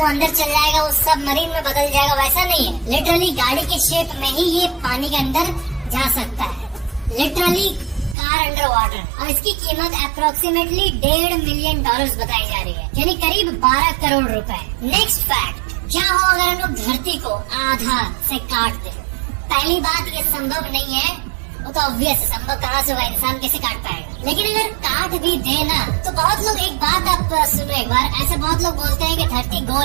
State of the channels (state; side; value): drops out; left; at 8.2 s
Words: अंदर चल जाएगा, वो सब मरीन में बदल जाएगा, वैसा नहीं है। लिटरली गाड़ी के शेप में ही ये पानी के अंदर जा सकता है। Literally car under water. और इसकी कीमत अप्रोक्सीमेटली $1.5 मिलियन बताई जा रही है, यानी करीब 12 करोड़ रुपए। नेक्स्ट फैक्ट, क्या हो अगर हम लोग धरती को आधा से काट दे? पहली बात, ये संभव नहीं है, वो तो ऑब्वियस है, संभव कहाँ से होगा, इंसान कैसे काट पाएगा। लेकिन अगर काट भी देना तो बहुत लोग, एक बात आप सुनो एक बार, ऐसे बहुत लोग बोलते हैं कि धरती